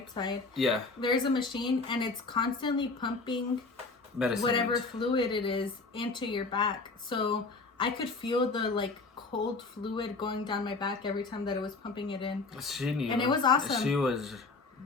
side. Yeah. There's a machine, and it's constantly pumping medicine, whatever fluid it is, into your back. So I could feel the like cold fluid going down my back every time that it was pumping it in. She knew. And it was awesome. She was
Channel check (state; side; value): quieter; right; 3.8 dB